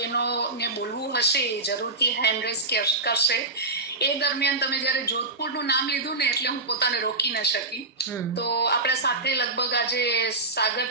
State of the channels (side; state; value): left; quieter; 3.1 dB